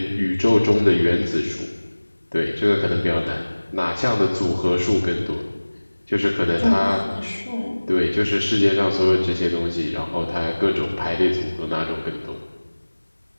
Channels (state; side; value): inverted; both; correlation -1.00